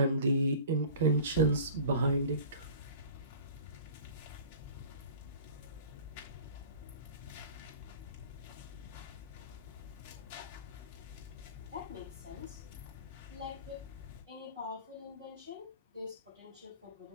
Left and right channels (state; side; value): inverted; both; correlation -0.42